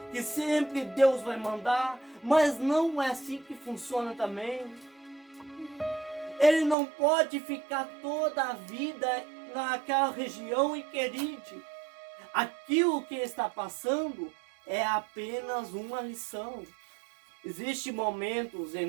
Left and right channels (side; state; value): left; drops out; at 6.8 s